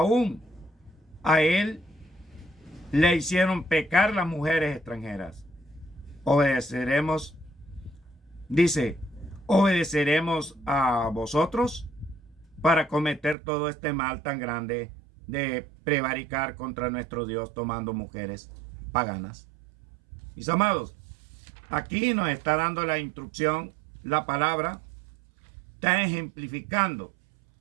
a él le hicieron pecar las mujeres extranjeras. Obedeceremos, dice, ¿obedeceremos a vosotros? para cometer todo este mal tan grande de prevaricar contra nuestro Dios tomando mujeres paganas. Mis amados, aquí nos está dando la instrucción, la palabra está ejemplificando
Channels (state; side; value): drops out; left; at 13.4 s